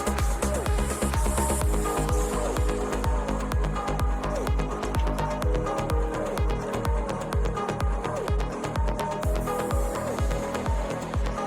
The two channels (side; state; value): both; identical; correlation 1.00